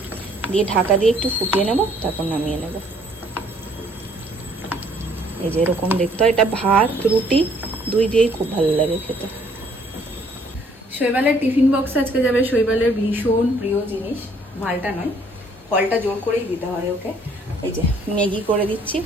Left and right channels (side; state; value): both; normal; correlation 0.62